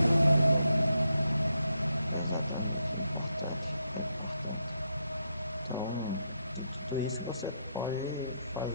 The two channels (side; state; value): both; inverted; correlation -0.81